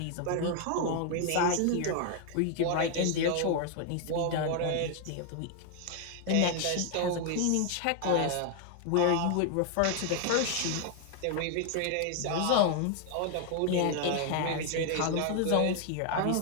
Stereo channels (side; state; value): both; different; correlation 0.00